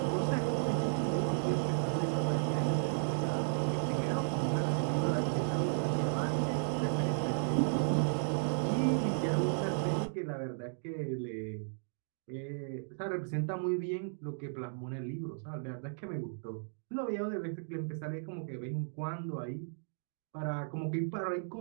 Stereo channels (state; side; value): silent; left; digital silence